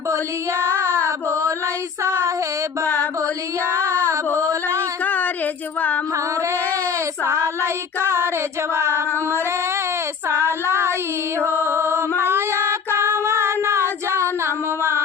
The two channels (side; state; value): right; quieter; 6.3 dB